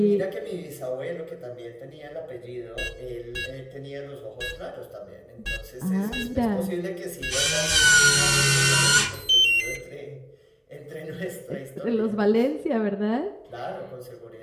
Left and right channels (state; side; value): identical; both; correlation 1.00